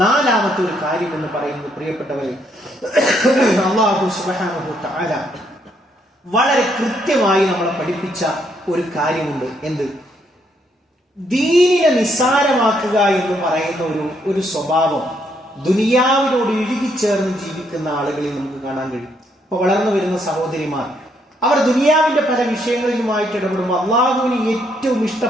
ഒരു കാര്യം എന്ന് പറയുന്നത്, പ്രിയപ്പെട്ടവരെ, അല്ലാഹു സുബ്ഹാനഹു തആല വളരെ കൃത്യമായി നമ്മളെ പഠിപ്പിച്ച ഒരു കാര്യമുണ്ട്. എന്ത്? ദീനിനെ നിസ്സാരമാക്കുക എന്ന് പറയുന്ന ഒരു സ്വഭാവം ദുനിയാവിനോട് ഇഴുകിച്ചേർന്ന് ജീവിക്കുന്ന ആളുകളിൽ നമുക്ക് കാണാൻ കഴിയും. ഇപ്പൊ വളർന്നു വരുന്ന സഹോദരിമാർ അവർ ദുനിയാവിന്റെ പല വിഷയങ്ങളിലുമായിട്ട് ഇടപെടുമ്പോൾ അള്ളാഹുവിന് ഏറ്റവും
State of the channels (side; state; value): both; normal; correlation 0.73